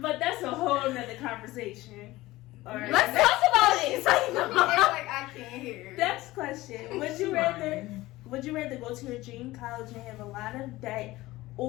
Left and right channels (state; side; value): quieter; right; 18.3 dB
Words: But that's a whole nother conversation. All right. Let's talk about it. Like I can't hear. Next question. Would you rather go to your dream college and have a lot of debt